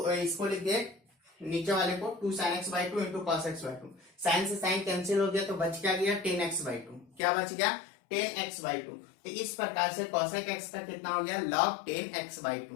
इसको लिख दिए नीचे वाले को 2 sine x by 2 into cos x by 2, sine से साइन कैंसिल हो गया तो बच क्या गया, 10 एक्स बाई 2। क्या बच गया, 10 एक्स बाई 2। तो इस प्रकार से कॉसेक एक्स का कितना हो गया, लॉग 10 एक्स बाई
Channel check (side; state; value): right; drops out; at 7.2 s